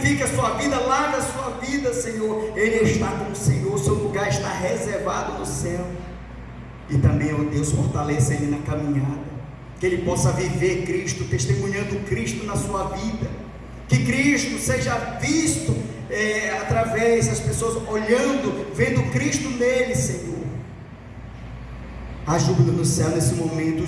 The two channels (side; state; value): both; identical; correlation 1.00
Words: a sua vida, lava a sua vida, Senhor. Ele está com o Senhor, seu lugar está reservado no céu. E também, ó Deus, fortaleça ele na caminhada, que ele possa viver Cristo, testemunhando Cristo na sua vida, que Cristo seja visto através das pessoas olhando, vendo Cristo nele, Senhor. Há júbilo no céu nesse momento,